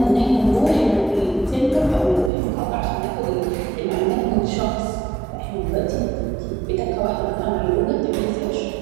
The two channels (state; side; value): drops out; left; at 2.3 s